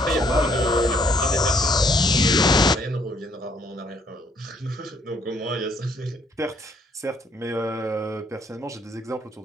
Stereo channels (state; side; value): normal; both; correlation 0.66